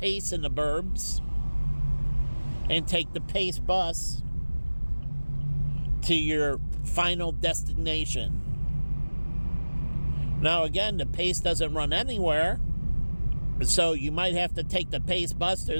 in the burbs and take the pace bus to your final destination. Now again, the pace doesn't run anywhere, so you might have to take the pace bus to a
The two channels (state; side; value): inverted; both; correlation -1.00